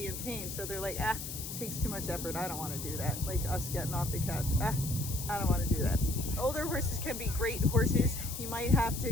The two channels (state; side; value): noise; left; hiss, 7 dB below the sound